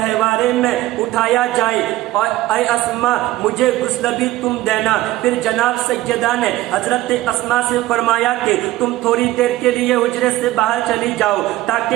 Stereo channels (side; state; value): left; quieter; 16.4 dB